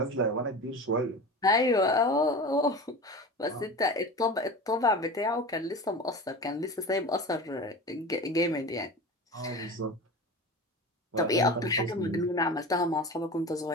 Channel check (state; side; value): normal; both; correlation 0.32